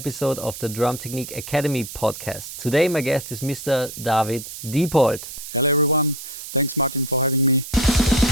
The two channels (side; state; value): right; noise; hiss, 11 dB below the sound